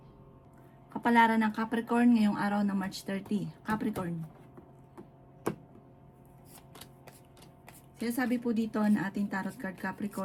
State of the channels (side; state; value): both; identical; correlation 1.00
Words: Kapalaran ng Capricorn ngayong araw ng March 30. Capricorn. Sinasabi po dito na ating tarot card